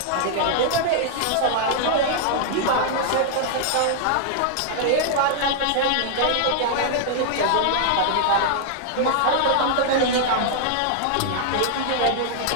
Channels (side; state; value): both; different; correlation -0.01